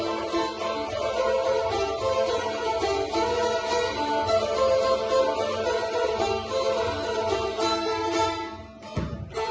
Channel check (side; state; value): both; identical; correlation 1.00